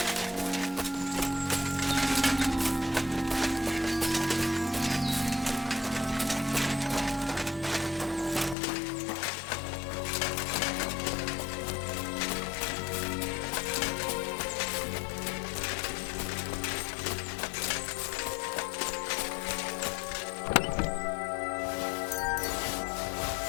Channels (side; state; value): right; drops out; at 8.6 s